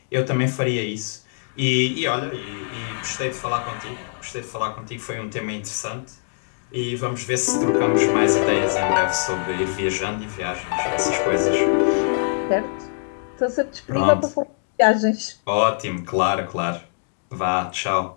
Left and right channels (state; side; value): silent; right; digital silence